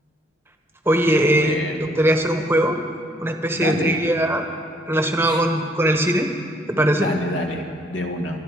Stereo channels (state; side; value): normal; both; correlation 0.66